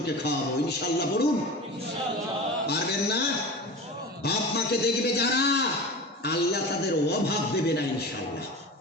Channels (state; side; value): normal; both; correlation 0.32